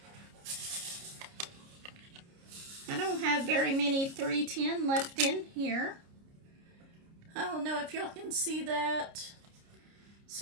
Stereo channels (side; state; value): left; late; 29 ms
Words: I don't have very many 310 left in here. I don't know if y'all can see that.